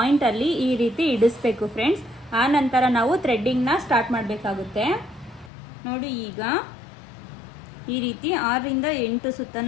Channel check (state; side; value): drops out; right; at 5.5 s